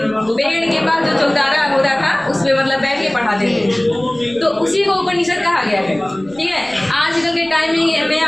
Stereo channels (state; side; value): noise; left; rumble, 27 dB below the sound